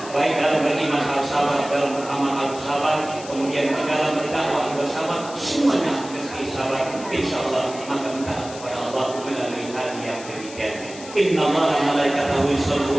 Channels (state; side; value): noise; left; hiss, 15 dB below the sound